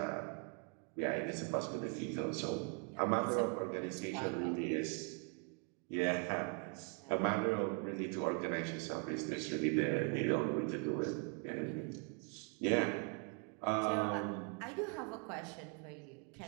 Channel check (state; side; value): quieter; left; 36.8 dB